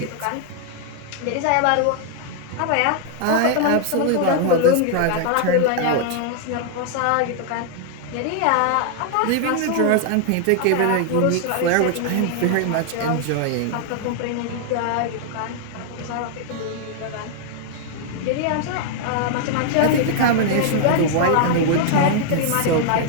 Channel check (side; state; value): both; different; correlation 0.00